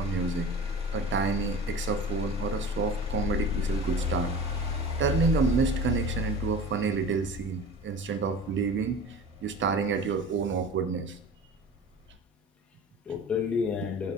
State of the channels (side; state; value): both; normal; correlation 0.37